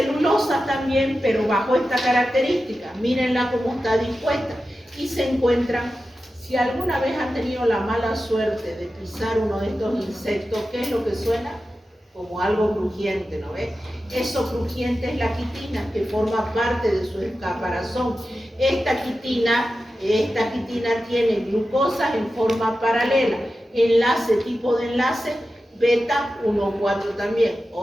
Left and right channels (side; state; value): both; normal; correlation 0.92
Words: también, pero bajo esta característica. Mírenla cómo está dispuesta. Y se encuentran, si alguna vez han tenido la mala suerte de pisar uno de estos insectos, ¿qué es lo que suena? Como algo crujiente, ¿no ves? Eso crujiente es la quitina, que forma parte de su caparazón. Esta quitina tiene glucosas en forma paralela, tipo de enlace beta 1,4 también.